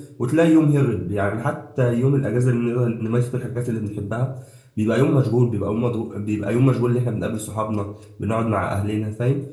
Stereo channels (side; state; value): both; identical; correlation 1.00